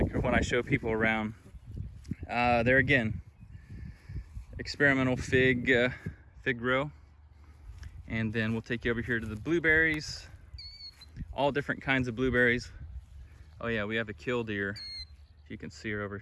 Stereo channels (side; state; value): both; identical; correlation 1.00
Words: or when I show people around. There again, experimental fig row. And then we'll take you over here to the blueberries. All different kinds of blueberries. Oh yeah, we have a killdeer. If you can see her over